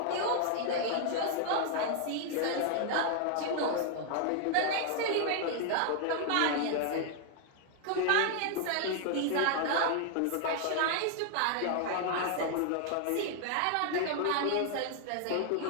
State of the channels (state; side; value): different; both; correlation 0.00